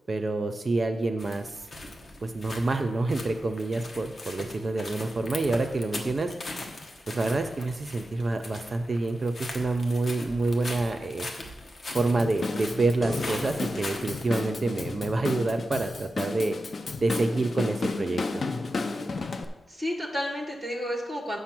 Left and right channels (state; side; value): normal; both; correlation 0.92